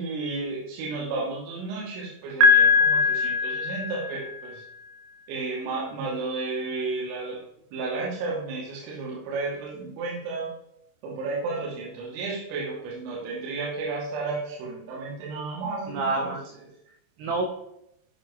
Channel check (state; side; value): late; left; 27 ms